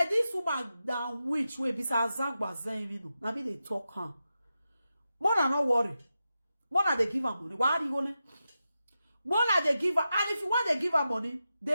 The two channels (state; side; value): inverted; both; correlation -0.90